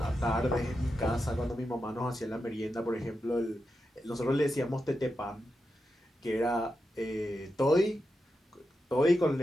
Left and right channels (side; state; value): both; normal; correlation 0.88